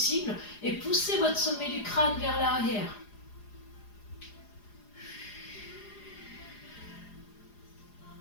et pousser votre sommet du crâne vers l'arrière.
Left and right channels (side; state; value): right; late; 4.9 ms